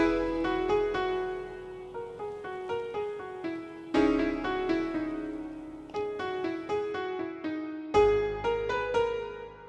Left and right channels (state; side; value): identical; both; correlation 1.00